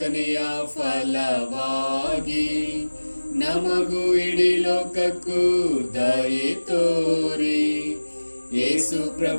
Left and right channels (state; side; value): inverted; both; correlation -1.00